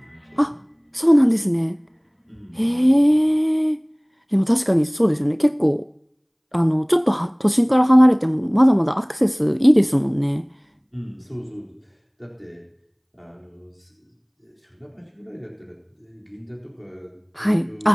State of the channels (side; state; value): both; identical; correlation 1.00